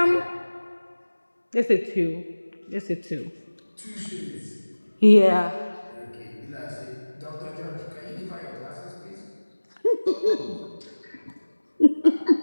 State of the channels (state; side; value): inverted; both; correlation -1.00